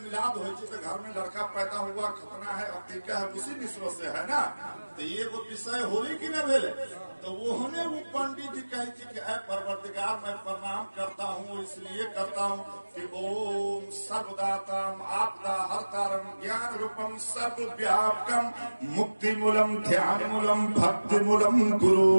मिलाद हो तो घर में लड़का पैदा हुआ, खतना है, अतीका है, उसी निस्बत से है ना। तो ये वो विषय होली की न भेले, तो वो होने वो पंडित जी कहे थी कि ऐ परवरदिगार मैं प्रणाम करता हूँ, इसलिए करता हूँ कि ओम सर्वदाताम आपदा हरतारम ज्ञान रूपम सर्वव्यापकम मुक्ति मूलम ध्यान मूलम भक्ति मूलम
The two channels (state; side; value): inverted; both; correlation -1.00